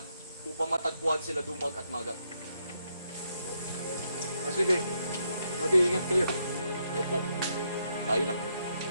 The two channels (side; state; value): both; inverted; correlation -0.78